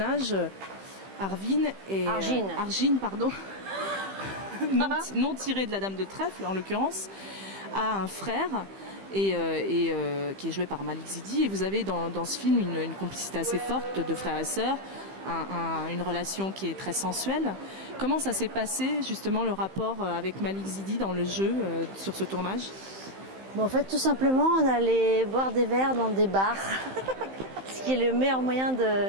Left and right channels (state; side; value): late; left; 15 ms